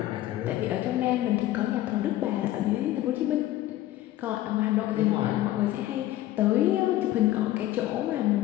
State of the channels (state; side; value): quieter; right; 14.6 dB